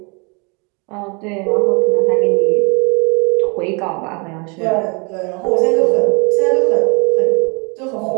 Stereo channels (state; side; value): quieter; left; 31.8 dB